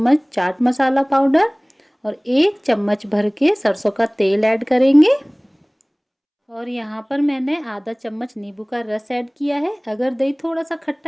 चाट मसाला पाउडर और 1 चम्मच भर के सरसों का तेल ऐड करेंगे। और यहाँ पर मैंने आधा चम्मच नींबू का रस ऐड किया है। अगर दही थोड़ा सा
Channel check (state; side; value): identical; both; correlation 1.00